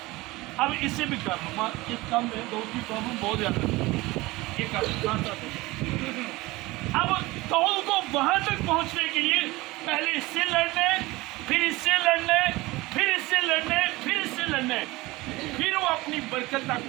اب اسے بھی کر لوں، اس کام میں داؤد کی پرابلم بہت زیادہ ہے، یہ کر لوں۔ اب داؤد کو وہاں تک پہنچنے کے لیے پہلے اس سے لڑنے، پھر اس سے لڑنے، پھر اس سے لڑنے، پھر اس سے لڑنے، پھر وہ اپنی برکت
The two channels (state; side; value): quieter; left; 20.8 dB